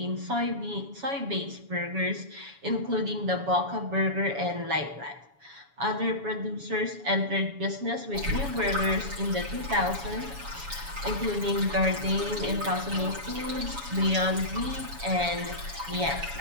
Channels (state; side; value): late; left; 7.1 ms